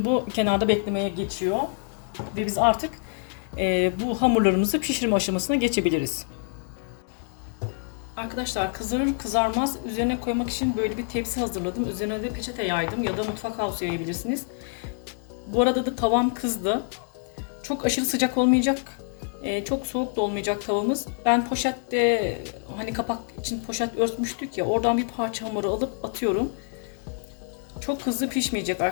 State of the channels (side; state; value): right; silent; 61 dB below the other